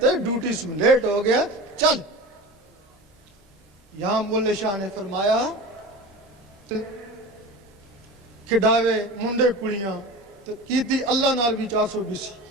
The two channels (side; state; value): both; normal; correlation 0.32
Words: ہے ڈیوٹی سے لیٹ ہو گیا چل. یہاں مولے شاہ نے فرمایا کھڈاوے منڈے کڑیاں تو کی تھی اللہ نال بھی 420.